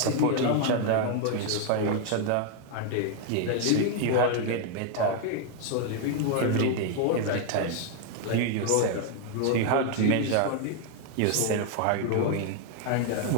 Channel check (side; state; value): both; different; correlation 0.00